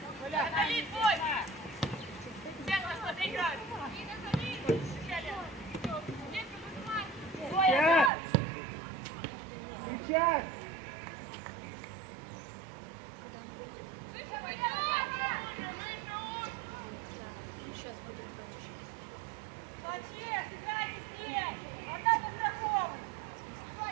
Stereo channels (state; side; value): drops out; left; at 8.1 s